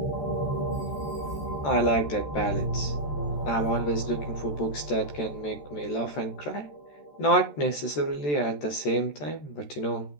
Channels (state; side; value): late; right; 14 ms